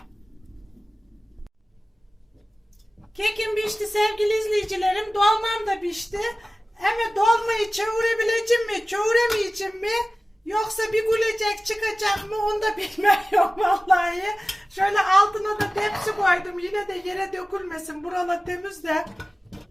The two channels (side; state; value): both; normal; correlation 0.97